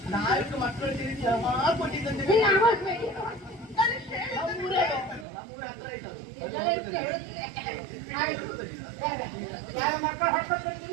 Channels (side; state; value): left; drops out; at 5.2 s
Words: 4 ಮಕ್ಕಳು ತಿರುಗಿ ಕೊಟ್ಟಿದ್ದಂತೆ.